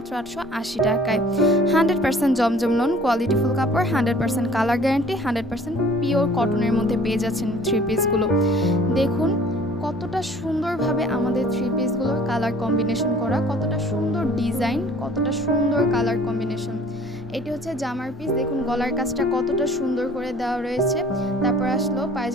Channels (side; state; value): both; normal; correlation 0.51